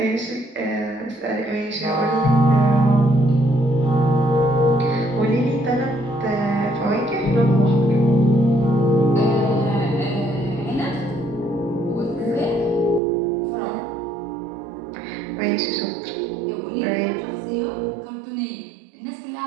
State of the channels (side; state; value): left; drops out; at 13.0 s